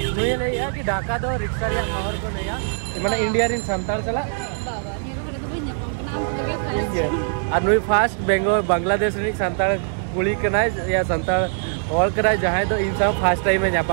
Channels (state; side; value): silent; left; digital silence